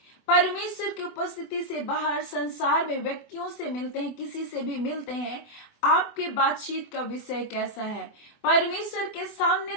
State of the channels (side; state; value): right; late; 24 ms